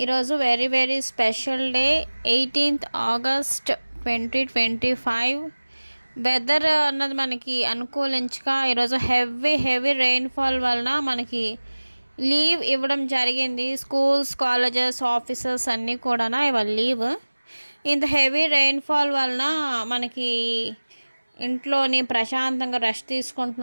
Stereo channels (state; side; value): inverted; both; correlation -1.00